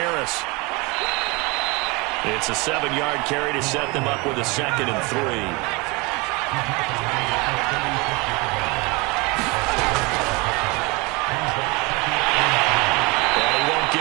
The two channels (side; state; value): left; quieter; 26.6 dB